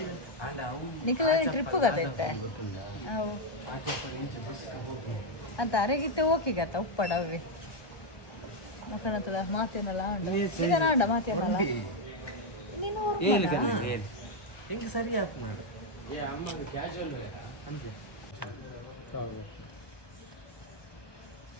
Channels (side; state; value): right; late; 1.3 ms